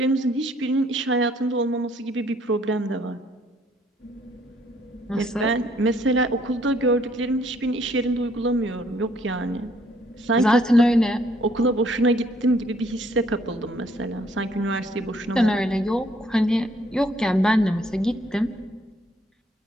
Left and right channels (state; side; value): normal; both; correlation 0.65